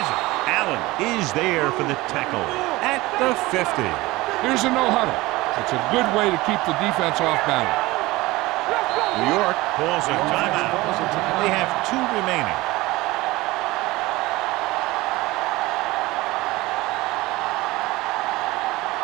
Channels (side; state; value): left; quieter; 20.1 dB